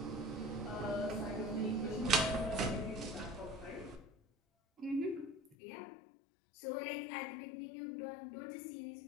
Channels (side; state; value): right; drops out; at 5.6 s